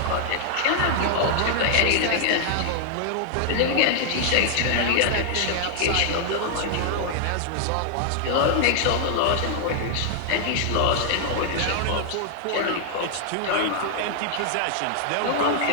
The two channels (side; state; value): both; different; correlation 0.00